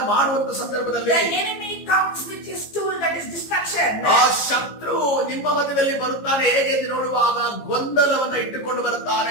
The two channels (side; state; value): right; late; 15 ms